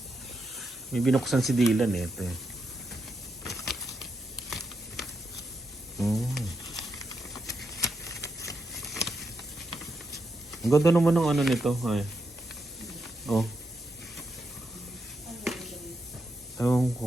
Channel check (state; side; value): normal; both; correlation 0.83